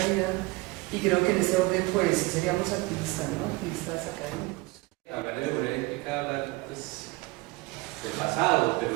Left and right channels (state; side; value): quieter; left; 23.0 dB